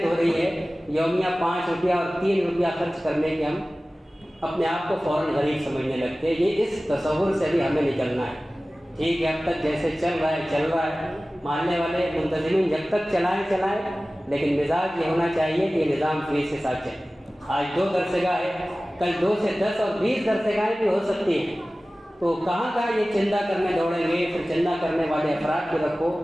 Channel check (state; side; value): normal; both; correlation 0.97